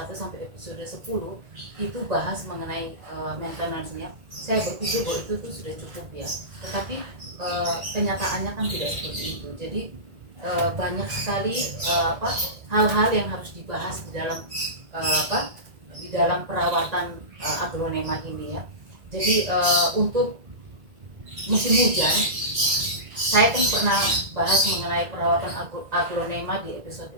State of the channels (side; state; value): left; late; 1.8 ms